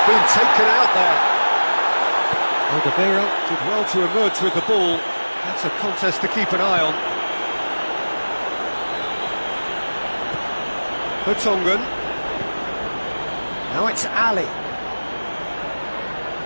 been taken out there. Alderweireld did well to emerge with the ball. That's a contest to keep an eye on. Vertonghen. Now it's Ali.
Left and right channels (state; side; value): inverted; both; correlation -1.00